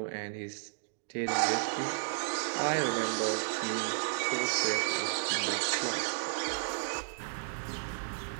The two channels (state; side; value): silent; left; digital silence